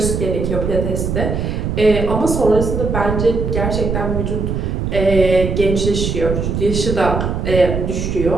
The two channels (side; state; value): right; noise; rumble, 2 dB below the sound